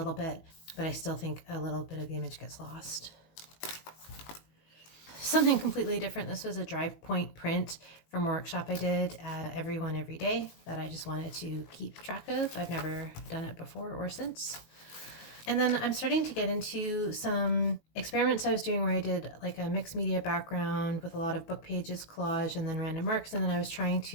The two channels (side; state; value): right; late; 19 ms